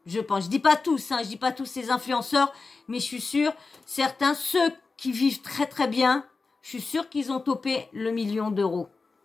Je pense. Je dis pas tous, je dis pas tous ces influenceurs, mais je suis sûre, certains, ceux qui vivent très très bien, je suis sûre qu'ils ont topé le 1 million d'euros.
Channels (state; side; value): quieter; right; 4.1 dB